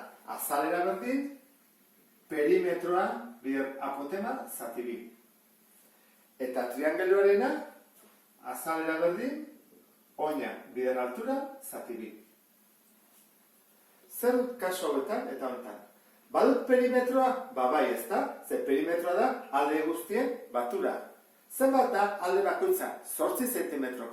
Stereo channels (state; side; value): identical; both; correlation 1.00